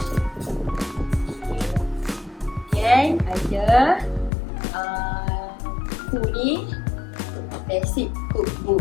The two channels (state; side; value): drops out; right; at 4.3 s